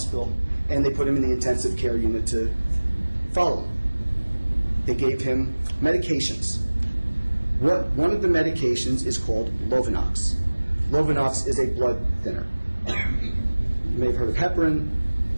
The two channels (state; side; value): inverted; both; correlation -1.00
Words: and they put him in the intensive care unit to follow him. They gave him medications. One of the medications is called Lovenox. Lovenox is a blood thinner. You may have heard of heparin,